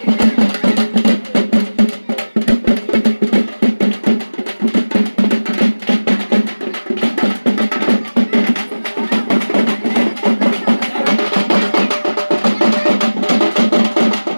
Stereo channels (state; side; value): inverted; both; correlation -1.00